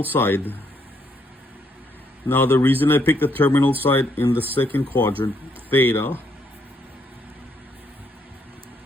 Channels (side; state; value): both; normal; correlation 0.73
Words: side. Now, the reason I picked the terminal side in the second quadrant, theta,